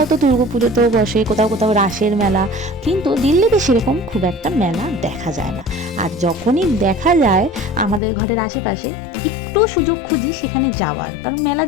তো দুর্গাপুজোতেও বসে, কোথাও কোথাও রাসের মেলা। কিন্তু দিল্লিতে সেরকম খুব একটা মেলা দেখা যায় না। আর যখনই দেখা যায় আমাদের ঘরের আশেপাশে, একটু সুযোগ খুঁজি সেখানে যাওয়ার, কারণ মেলা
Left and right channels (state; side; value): drops out; right; at 8.0 s